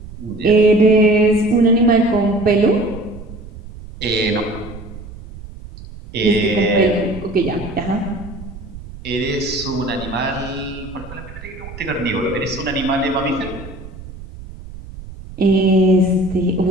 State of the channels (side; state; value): right; noise; rumble, 14 dB below the sound